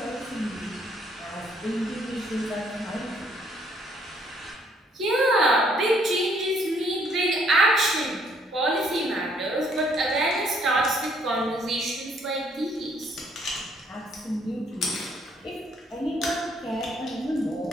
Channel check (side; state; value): both; normal; correlation 0.66